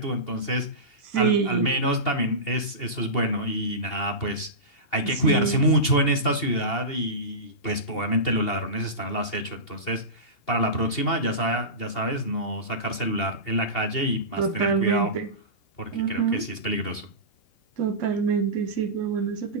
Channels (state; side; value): late; right; 2.8 ms